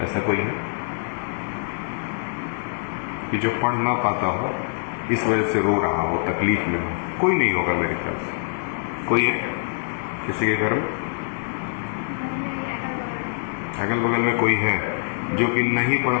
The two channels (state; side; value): silent; right; digital silence